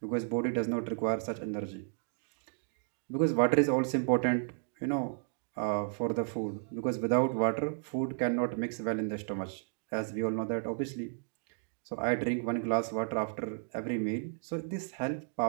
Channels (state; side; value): silent; left; digital silence